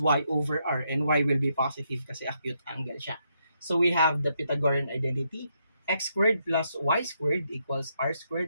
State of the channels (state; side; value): inverted; both; correlation -0.78